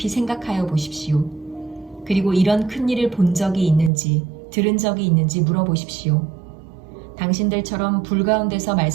생각하여 보십시오. 그리고 이런 큰 일을 본 적이 있는지 들은 적이 있는지 물어보십시오. 당신들처럼 불 가운데서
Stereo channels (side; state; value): left; drops out; at 3.9 s